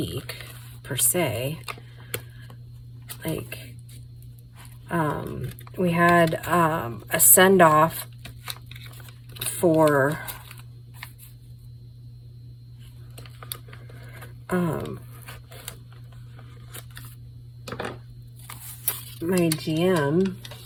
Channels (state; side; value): identical; both; correlation 1.00